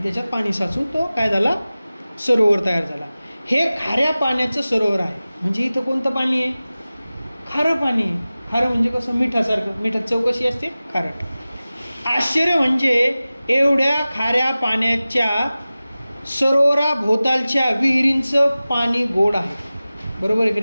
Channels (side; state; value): both; inverted; correlation -0.97